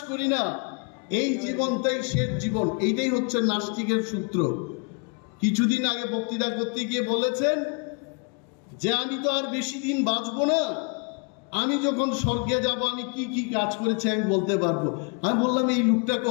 করি না, এই জীবনটাই শেষ জীবন। এইটাই হচ্ছে নাস্তিকের সূত্র। কিছুদিন আগে বক্তৃতা করতে গিয়ে বলেছেন যে আমি তো আর বেশি দিন বাঁচবো না, আমি যখন স্বর্গে যাব আমি কি কি কাজ করেছি আমি বলতে পারবো। আমি বললাম, এই লোকটা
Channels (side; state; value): right; quieter; 35.9 dB